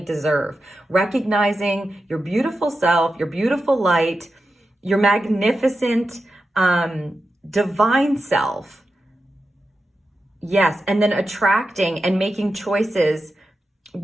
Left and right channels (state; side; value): normal; both; correlation 0.90